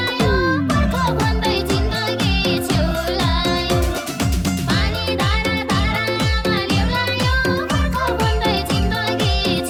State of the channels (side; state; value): both; identical; correlation 1.00